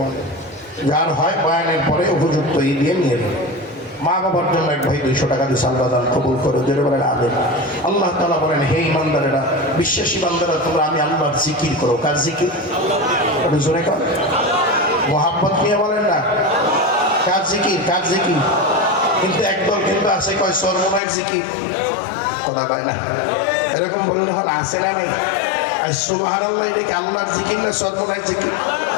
দেয়। যার হয় বয়ানের পরে উপযুক্ত দিয়ে নিয়ে নেবে। মা বাবার জন্য এক ভাই 200 টাকা দিয়ে আল্লাহ দান কবুল করে যেটা বলেন আবেন। আল্লাহ তাআলা বলেন, হে ঈমানদারেরা, বিশ্বাসী বান্দারা, তোমরা আমি আল্লাহর জিকির করো। কার জিকির? একটু জোরে কর, মোহাব্বত নিয়ে বলেন না। কার জিকির? কার জিকির? কিন্তু একদল কিন্তু আছে কয় সর্বনায়ের জিকির, কথা কয় না। এরকম বললে হল আছে না নাই? সুবহানাল্লাহ, এটা কি আল্লাহর জিকির না সর্বনায়ের জিকির?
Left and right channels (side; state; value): right; drops out; at 21.0 s